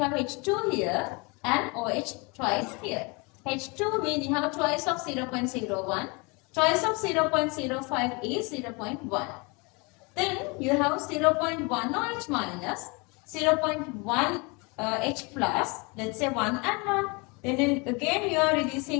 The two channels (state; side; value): quieter; right; 29.4 dB